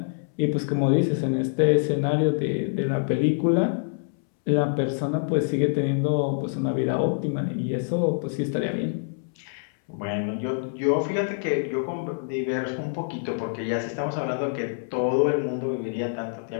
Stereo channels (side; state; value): right; silent; 61 dB below the other